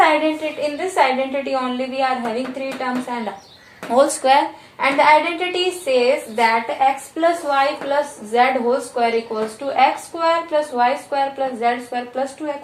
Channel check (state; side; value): identical; both; correlation 1.00